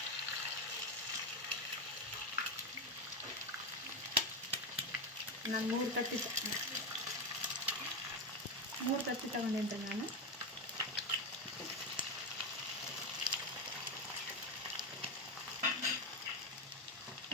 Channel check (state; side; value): normal; both; correlation 0.12